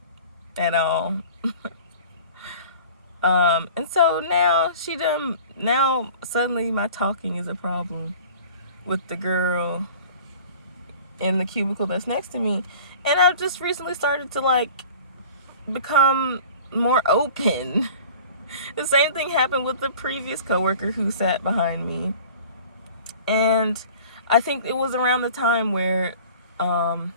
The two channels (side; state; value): both; inverted; correlation -0.44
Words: at all. And so now now suddenly my talking is a problem with the girl in the cubicle that's next to me. And I've just recently started to like become more open. The same thing happened with the previous coworker who sat behind me. And I think it was around the time where